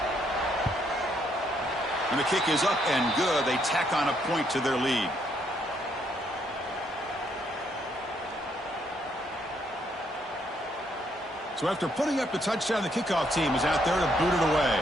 And the kick is up and good. They tack on a point to their lead. So after putting up the touchdown, the kickoff team is out there to boot it away.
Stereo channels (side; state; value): both; normal; correlation 0.72